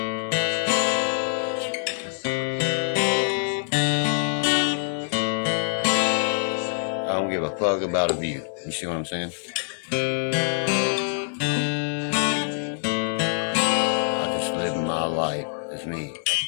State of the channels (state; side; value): silent; right; digital silence